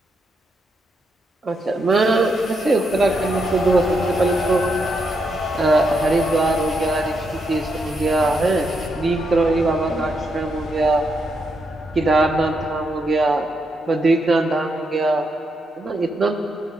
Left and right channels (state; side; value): normal; both; correlation 0.80